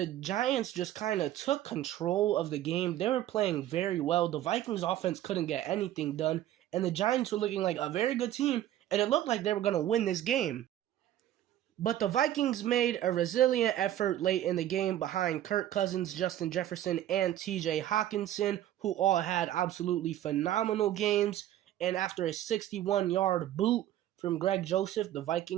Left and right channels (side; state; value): left; quieter; 12.6 dB